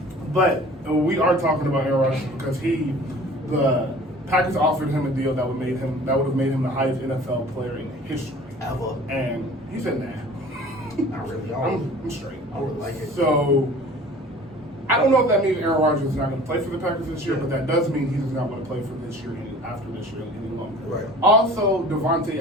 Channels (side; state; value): both; normal; correlation 0.46